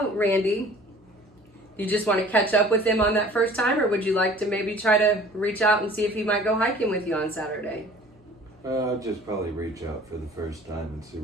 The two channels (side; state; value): both; normal; correlation 0.48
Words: Randy, you just want to catch up with him on that first time, or would you like to maybe try to reach out and see if he might go hiking with you on Saturday? I'll just probably reach out for the first time and see